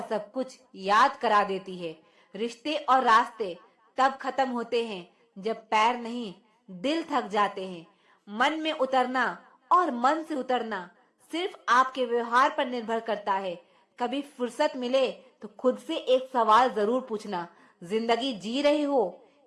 सब कुछ याद करा देती है। रिश्ते और रास्ते तब खत्म होते हैं जब पैर नहीं दिल थक जाते हैं। मन में उतरना और मन से उतरना सिर्फ आपके व्यवहार पर निर्भर करता है। कभी फुर्सत मिले तो खुद से एक सवाल जरूर पूछना, जिंदगी जी रहे हो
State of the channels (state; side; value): identical; both; correlation 1.00